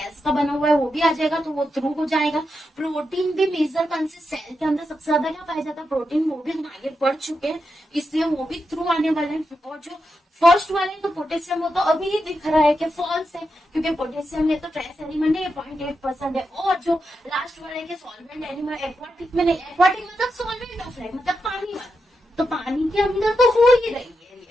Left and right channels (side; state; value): both; normal; correlation 0.86